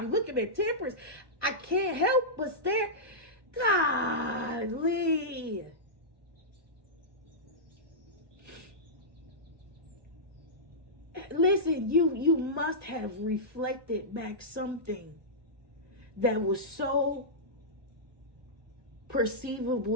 looking at Temperance. I can't help but stare. Golly. Listen, you must have reflected back something that was so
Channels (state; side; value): late; left; 1.1 ms